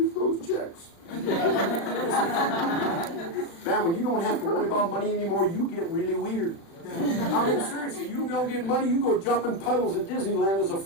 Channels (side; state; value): right; late; 36 ms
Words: those checks. Man, when you don't have to worry about money anymore, you get really weird. I mean, seriously, you don't get money, you go jumping puddles at Disneyland as a